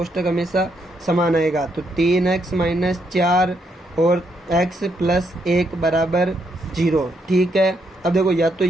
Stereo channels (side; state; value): both; normal; correlation 0.76